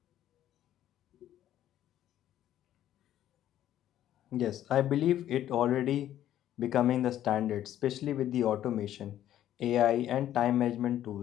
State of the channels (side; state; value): right; quieter; 12.0 dB